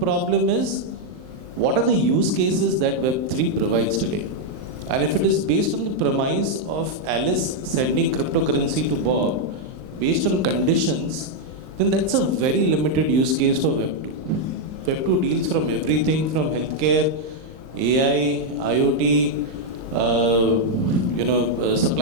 is, what are the use cases that Web3 provides today? And if it is based on the premise of Alice sending cryptocurrency to Bob based on conditions, then that's a very limited use case for Web2. Web2 deals from everything from healthcare, AI, IoT,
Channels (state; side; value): late; left; 39 ms